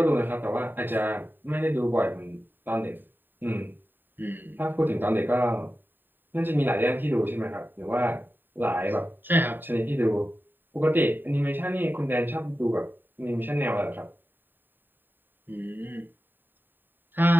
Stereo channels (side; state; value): left; late; 0.093 ms